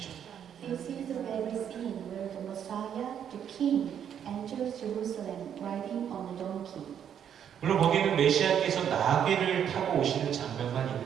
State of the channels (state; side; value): quieter; left; 8.9 dB